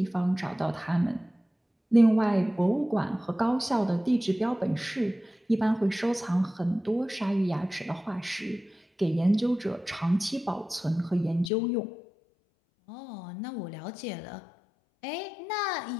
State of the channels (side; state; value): right; drops out; at 11.5 s